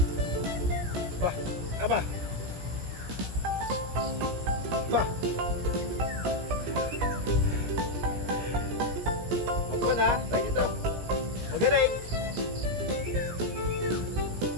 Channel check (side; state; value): left; late; 17 ms